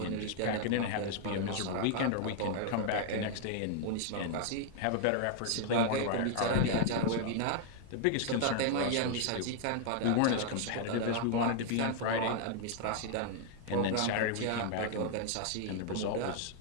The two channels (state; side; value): different; both; correlation 0.00